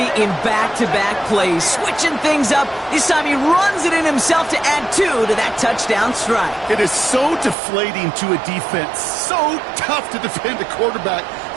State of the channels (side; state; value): left; drops out; at 7.6 s